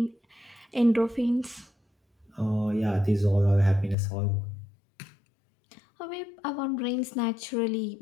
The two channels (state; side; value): drops out; right; at 4.0 s